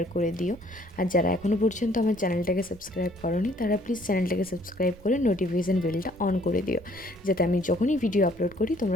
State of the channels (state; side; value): noise; right; rumble, 22 dB below the sound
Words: করে দিও। আর যারা এখনও পর্যন্ত আমার চ্যানেলটাকে সাবস্ক্রাইব করোনি, তারা প্লিজ চ্যানেলটাকে সাবস্ক্রাইব করে নোটিফিকেশান বেলটা অন করে দিও, যাতে আমি যখনই ভিডিও আপলোড করি